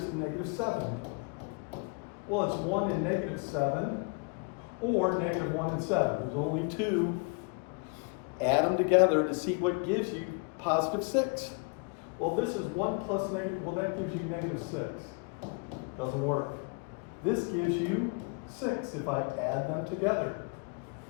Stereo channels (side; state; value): right; quieter; 34.5 dB